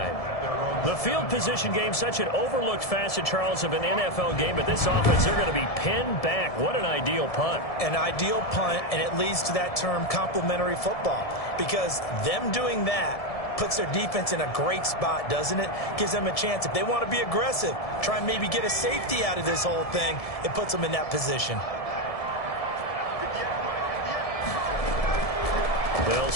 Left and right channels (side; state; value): right; late; 1.7 ms